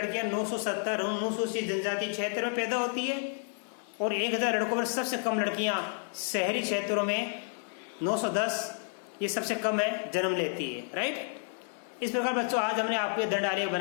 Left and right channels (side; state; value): right; silent; 57 dB below the other